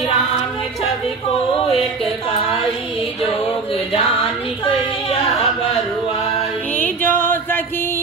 राम छवि को एक काई जोग जानी कैया बरुआई जो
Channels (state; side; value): quieter; left; 4.3 dB